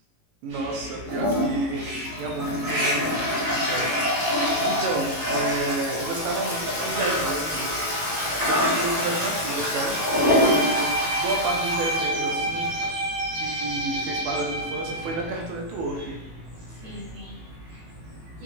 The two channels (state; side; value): late; left; 18 ms